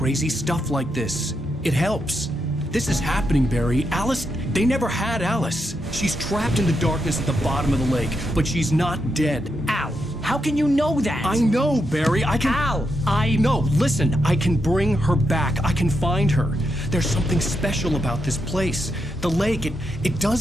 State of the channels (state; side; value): normal; both; correlation 0.83